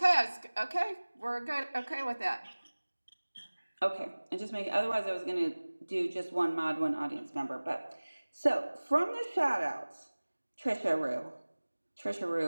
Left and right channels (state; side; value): inverted; both; correlation -1.00